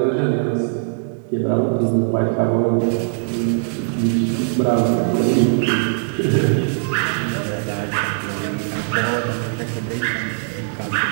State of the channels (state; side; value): silent; left; digital silence